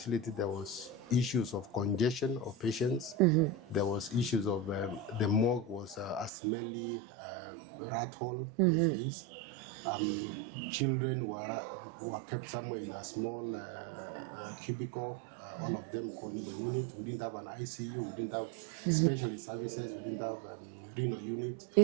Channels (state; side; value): drops out; left; at 6.3 s